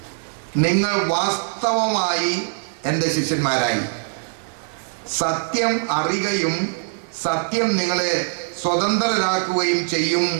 നിങ്ങൾ വാസ്തവമായി എൻ്റെ ശിഷ്യന്മാരായി. സത്യം അറിയുകയും സത്യം നിങ്ങളെ സ്വതന്ത്രരാക്കുകയും ചെയ്യും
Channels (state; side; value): silent; left; digital silence